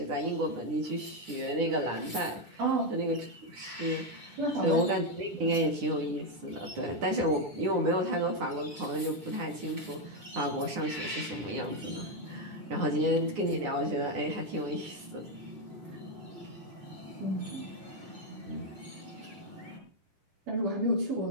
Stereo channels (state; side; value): late; left; 10 ms